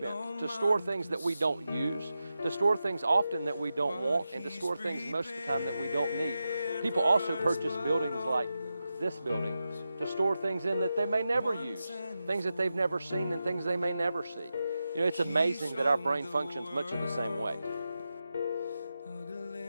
to store things that we don't use, to store things often that we don't want, and to store things most of the time that we don't need. People also purchase buildings like this building to store things in that they may never use, things that they've never seen and things they may never see. You know, it's amazing that our brain functions much of the same way.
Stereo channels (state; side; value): inverted; both; correlation -0.91